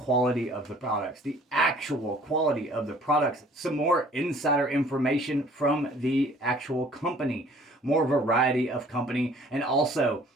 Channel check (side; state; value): both; normal; correlation 0.55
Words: of the products, the actual quality of the products, some more insider information from the actual company, more variety of company, and also,